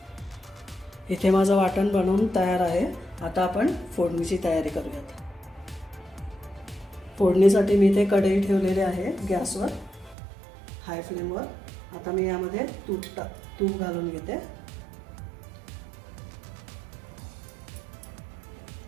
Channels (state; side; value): drops out; left; at 10.2 s